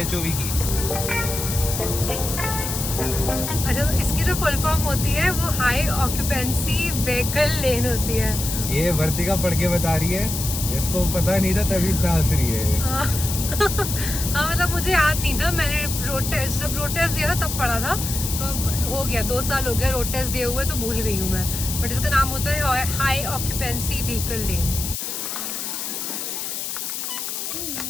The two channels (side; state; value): left; noise; hiss, 4 dB below the sound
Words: HOV की? अच्छा, तो इसकी जो फुल फॉर्म होती है वो हाई ऑक्यूपेंसी व्हीकल लेन होती है। ये वर्तिका पढ़ के बता रही है, इसको पता नहीं था तभी इतना हंस रही है। हाँ मतलब मुझे याद नहीं था, मैंने जब रोड टेस्ट दिया था तब पढ़ा था, तो हो गया 2 साल हो गया रोड टेस्ट दिए हुए, तो भूल गई हूँ मैं। बट इसका नाम होता है हाई ऑक्यूपेंसी व्हीकल लेन।